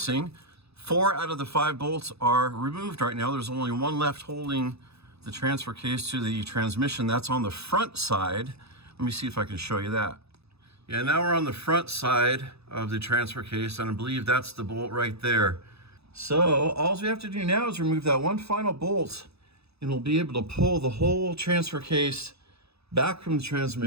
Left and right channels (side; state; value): left; late; 0.79 ms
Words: 4 out of the 5 bolts are removed right now. There's only 1 left holding the transfer case to the transmission. That's on the front side. Let me see if I can show you that. Yeah, now we're on the front side of the transfer case, and I believe that's the bolt right there. So all we have to do now is remove that 1 final bolt, and we'll be able to pull the whole transfer case back from the